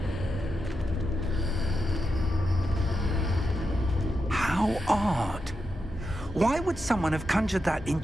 How odd. Why would someone have conjured that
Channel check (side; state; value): both; normal; correlation 0.87